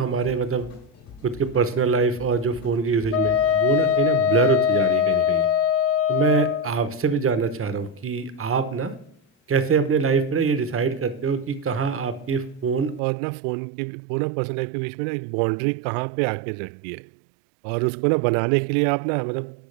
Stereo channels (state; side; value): drops out; left; at 13.0 s